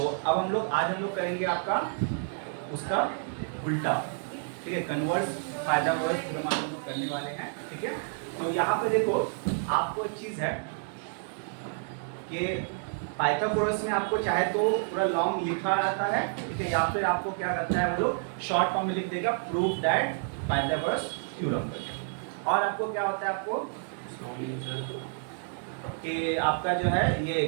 अब आज हम लोग करेंगे आपका उसका उल्टा, ठीक है। कन्वर्स पाइथागोरस थ्योरम हम लोग करने वाले हैं, ठीक है। तो यहाँ पे देखो आपको एक चीज है कि पाइथागोरस में आपको चाहे तो पूरा लॉन्ग लिखा रहता है, ठीक है, या फिर आपको क्या करता है वो लोग शॉर्ट फॉर्म में लिख देगा प्रूफ दैट पाइथागोरस थ्योरम। और आपको क्या होता है आपको कि आपका जो है ये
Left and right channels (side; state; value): left; silent; 58 dB below the other